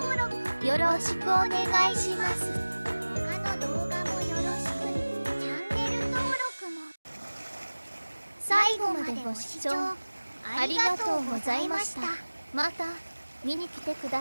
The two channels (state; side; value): inverted; both; correlation -1.00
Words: 録、よろしくお願いします。他の動画もよろしく、チャンネル登録も。最後までご視聴ありがとうございました。また見に来てく